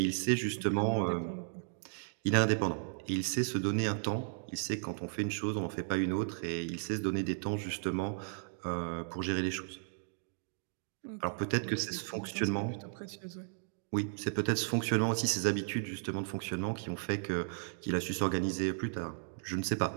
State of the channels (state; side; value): silent; left; digital silence